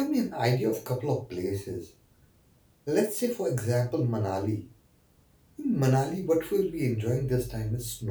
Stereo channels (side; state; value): both; identical; correlation 1.00